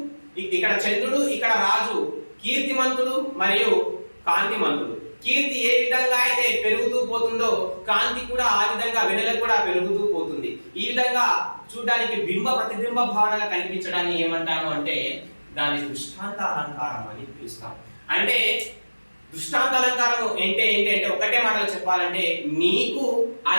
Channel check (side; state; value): both; inverted; correlation -1.00